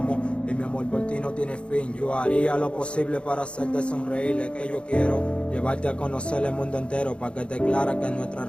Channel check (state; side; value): late; right; 0.058 ms